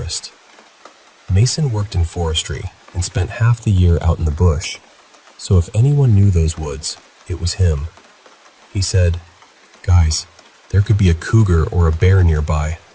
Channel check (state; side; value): identical; both; correlation 1.00